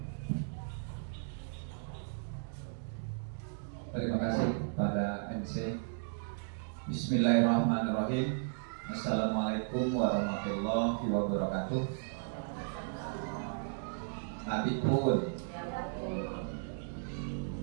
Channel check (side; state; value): left; silent; digital silence